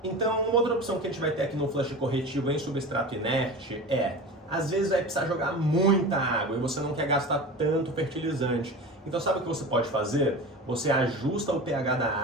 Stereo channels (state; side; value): normal; both; correlation 0.32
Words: Então, uma outra opção que a gente vai ter aqui no flush corretivo em substrato inerte às vezes vai precisar jogar muita água e você não quer gastar tanto fertilizante. Então sabe o que você pode fazer? Você ajusta o pH da